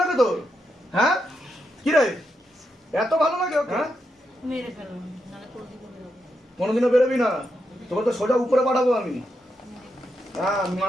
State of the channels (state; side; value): normal; both; correlation 0.84